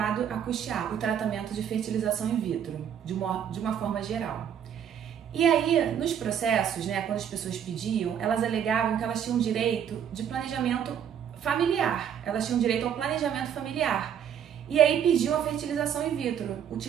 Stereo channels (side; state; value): left; quieter; 8.9 dB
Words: a custear o tratamento de fertilização in vitro, de uma forma geral. E aí, nos processos, quando as pessoas pediam, elas alegavam que elas tinham direito de planejamento familiar, elas tinham direito ao planejamento familiar. E aí pediu a fertilização in vitro,